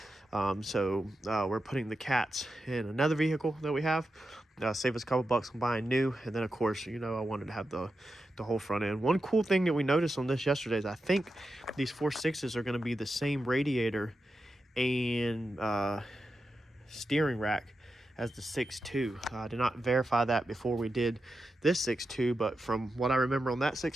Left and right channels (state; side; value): normal; both; correlation 0.89